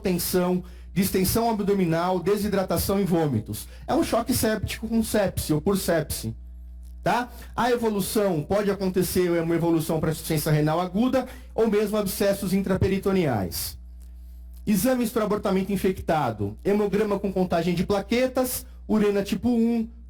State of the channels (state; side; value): identical; both; correlation 1.00